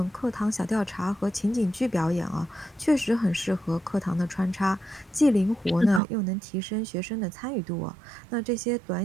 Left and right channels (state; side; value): drops out; left; at 6.0 s